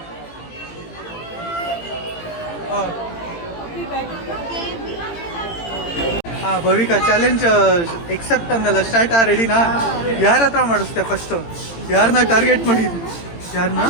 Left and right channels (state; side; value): late; right; 18 ms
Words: ಹಾಂ ಹಾಂ, ಭವಿಕಾ ಚಾಲೆಂಜ್ ಎಕ್ಸೆಪ್ಟ್ ಅಂದಲ್ಲ, ಸ್ಟಾರ್ಟ್. ರೆಡಿನಾ? ಯಾರ ಹತ್ರ ಮಾಡಿಸ್ತೆ ಫಸ್ಟು? ಯಾರನ್ನ ಟಾರ್ಗೆಟ್ ಮಾಡಿದ್ವಿ? ಯಾರನ್ನ?